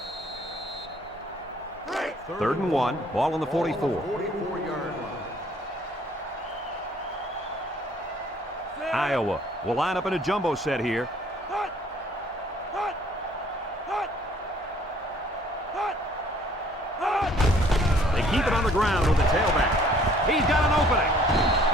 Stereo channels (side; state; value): both; normal; correlation 0.58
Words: 3rd and 1. Ball on the 44. 44-yard line. Iowa will line up in a jumbo set here. They keep it on the ground with the tailback. He's got an opening.